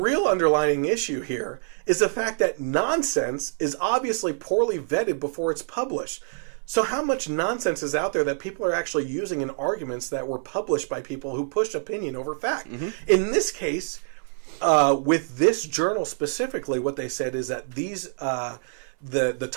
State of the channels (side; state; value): left; silent; 61 dB below the other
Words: underlying issue here is the fact that nonsense is obviously poorly vetted before it's published. So how much nonsense is out there that people are actually using in arguments that were published by people who push opinion over fact? Mm-hmm. In this case, with this journal specifically, what they said is that these the